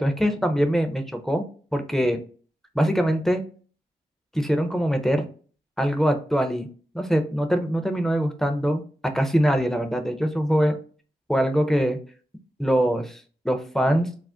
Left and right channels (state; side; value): normal; both; correlation 0.92